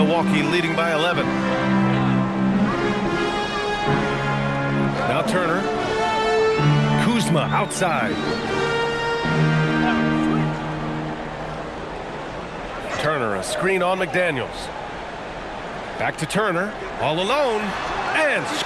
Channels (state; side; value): identical; both; correlation 1.00